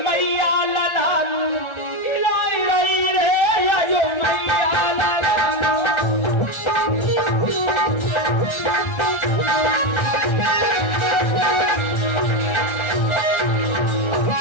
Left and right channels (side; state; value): right; late; 1.3 ms